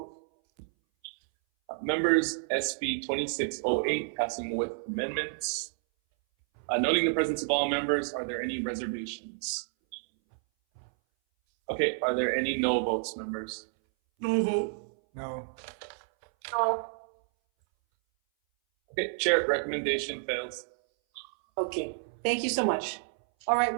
Members, SB 2608, passing with amendments. Noting the presence of all members, are there any reservations? Okay, are there any no votes, members? No vote. No. No. Okay, Chair, recommendation fails. Okay, thank you so much. All right,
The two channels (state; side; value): silent; left; 58 dB below the other